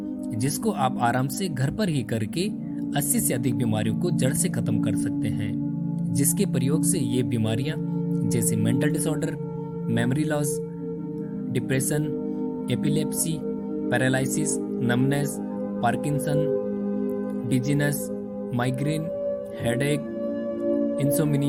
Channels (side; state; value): both; identical; correlation 1.00